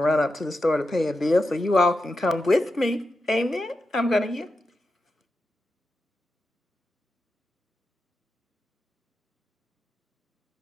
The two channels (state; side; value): normal; both; correlation 0.88